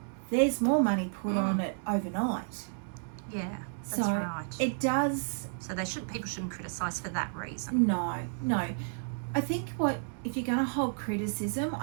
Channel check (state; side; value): silent; left; digital silence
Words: there's more money put on it overnight. Yeah, that's So right. it does. So people shouldn't criticise for that reason. No. I think if you're going to hold criticism,